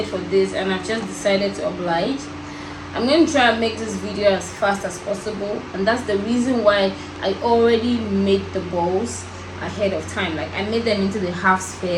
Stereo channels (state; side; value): identical; both; correlation 1.00